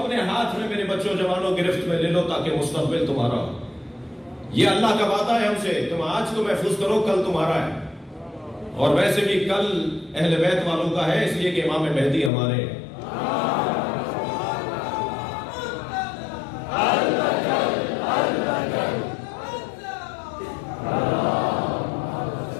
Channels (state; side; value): drops out; right; at 12.3 s